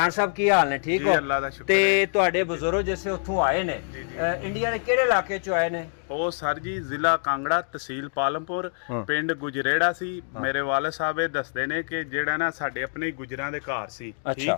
साहब की हाल ने? ठीक हो? अल्लाह दा शुक्र ते है। तुहाडे बुजुर्ग जिसे उत्थों आए ने इंडिया दे किहड़े इलाके चों आए ने? ਉਹ ਸਰ ਜੀ ਜ਼ਿਲ੍ਹਾ ਕਾਂਗੜਾ ਤਹਿਸੀਲ ਪਾਲਮਪੁਰ ਪਿੰਡ ਗੁਜਰੇੜਾ ਸੀ। ਮੇਰੇ ਵਾਲਿਦ ਸਾਹਿਬ ਇਹ ਦੱਸਦੇ ਨੇ ਕਿ ਜਿਹੜਾ ਨਾ ਸਾਡੇ ਆਪਣੇ ਗੁਜਰਾਂ ਦੇ ਘਰ ਸੀ,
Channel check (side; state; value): right; silent; digital silence